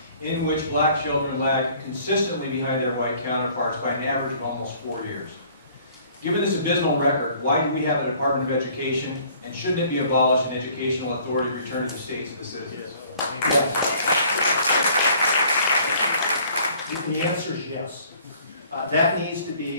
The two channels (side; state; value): both; inverted; correlation -0.56